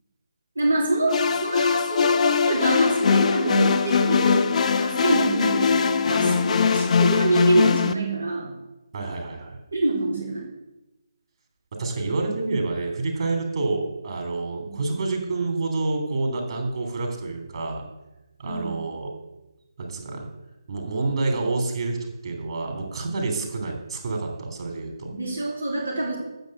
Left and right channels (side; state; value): both; inverted; correlation -0.78